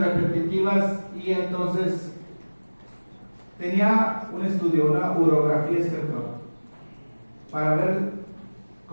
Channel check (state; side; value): inverted; both; correlation -1.00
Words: y entonces tenía un estudio, una urografía espectral, para ver